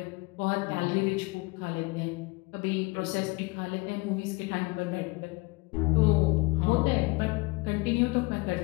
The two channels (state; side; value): quieter; right; 26.2 dB